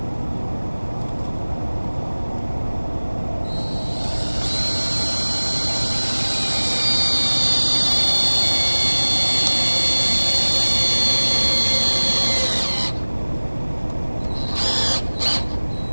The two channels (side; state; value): both; inverted; correlation -1.00